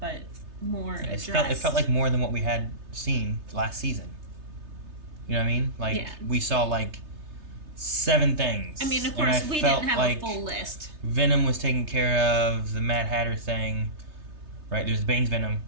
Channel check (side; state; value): left; late; 3.3 ms